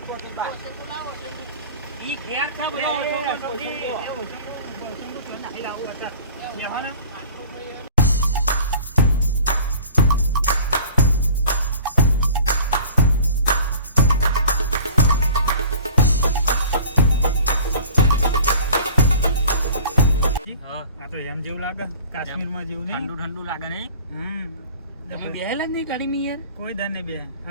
કોકે બા. ઈ ઘેર છે બધો એ, ઓછો ઓછો, ઓછો. ઓછો. એ ઓછો, ઓછો નાખી લાવું અત્યારે. બેહવાના? આ તો એમ જેવું લાગે કાશ્મીરમાં જેવું નહીં ઠંડુ ઠંડુ લાગે નહીં તમે બેહેલા જ નહીં ગાડીમાં યાર કોઈ દર નહીં બે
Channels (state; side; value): inverted; both; correlation -0.46